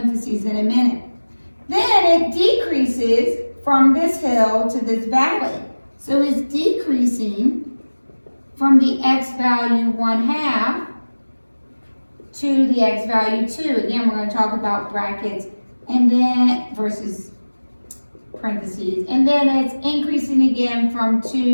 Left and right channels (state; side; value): inverted; both; correlation -1.00